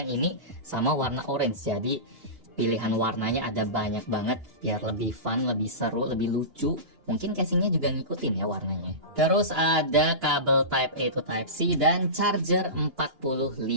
ini, sama warna orange. Jadi pilihan warnanya ada banyak banget biar lebih fun, lebih seru, lebih lucu. Mungkin casingnya juga ngikutin ya warnanya. Terus ada kabel Type A to Type C dan charger 45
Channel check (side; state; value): left; late; 2.9 ms